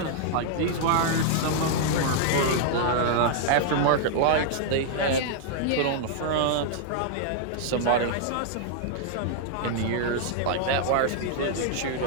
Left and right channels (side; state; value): both; different; correlation -0.01